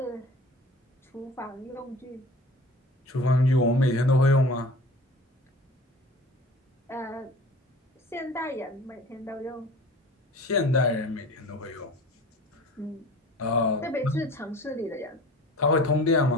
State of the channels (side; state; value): both; normal; correlation 0.42